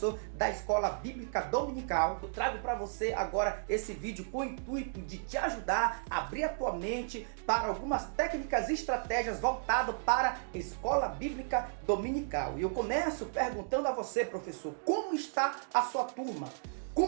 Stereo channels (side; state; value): left; silent; digital silence